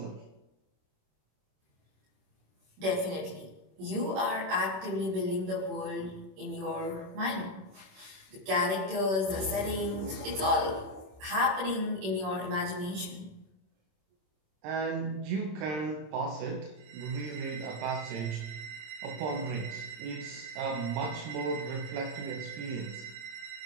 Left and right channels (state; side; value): late; left; 26 ms